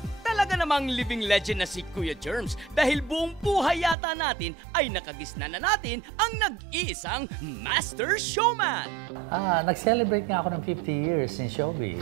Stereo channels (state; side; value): drops out; left; at 4.0 s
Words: Talaga namang living legend na si Kuya Germs dahil buong buhay yata natin ay nakagisna na natin ang nag-iisang master showman. Nag-celebrate nga ako ng 50 years in showbiz.